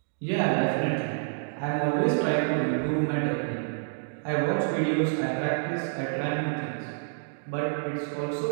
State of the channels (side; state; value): left; silent; digital silence